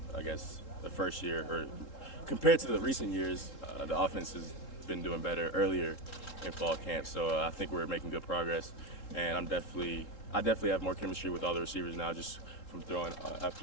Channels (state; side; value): late; right; 3.7 ms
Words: I guess, the first year, or compared to the recent years, the offense has been doing better earlier in fall camp. So I think we're making good progress, and I definitely have more chemistry with all the receivers now, just from throwing